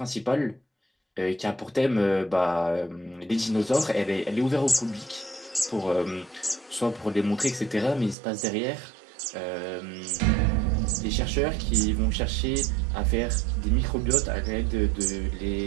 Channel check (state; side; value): drops out; left; at 8.2 s